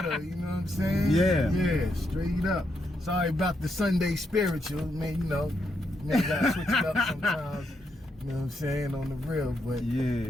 You know what I'm saying? Yeah, straight up. Sorry about the Sunday spiritual, man. You know, gotta switch it up sometimes. You know what I'm saying, on the real, but yeah,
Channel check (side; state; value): both; normal; correlation 0.80